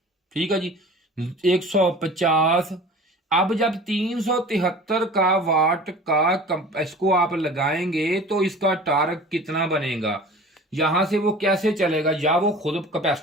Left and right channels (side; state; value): both; normal; correlation 0.41